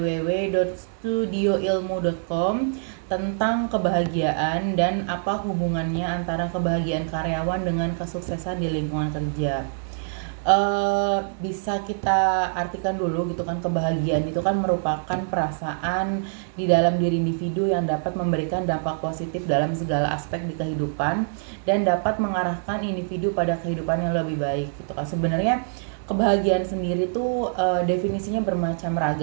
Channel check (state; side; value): silent; left; digital silence